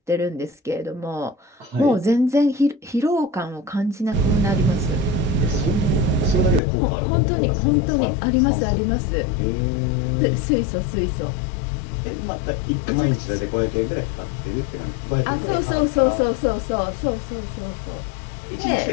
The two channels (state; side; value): drops out; right; at 6.6 s